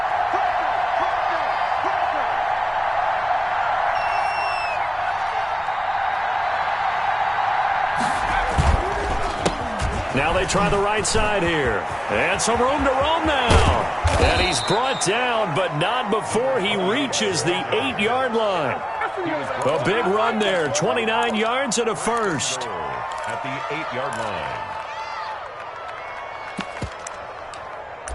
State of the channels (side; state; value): both; identical; correlation 1.00